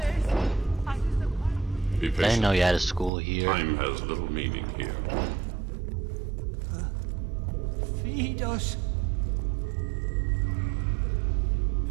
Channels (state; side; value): drops out; left; at 3.1 s